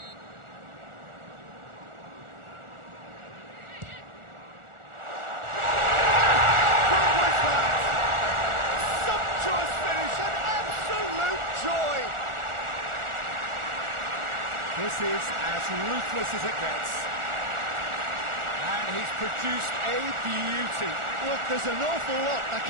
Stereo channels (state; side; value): late; left; 1.4 ms